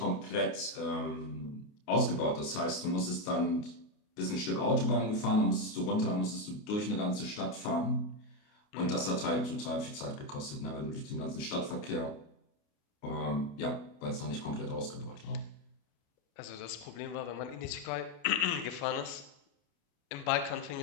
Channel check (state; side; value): late; right; 28 ms